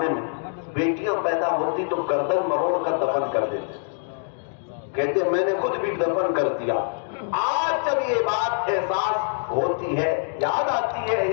میں بیٹیاں پیدا ہوتی تو گردن مروڑ کر دفن کر دیتے، کہتے میں نے خود بھی دفن کر دیا۔ آج جب یہ بات احساس ہوتی ہے، یاد آتی ہے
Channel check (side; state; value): right; silent; 62 dB below the other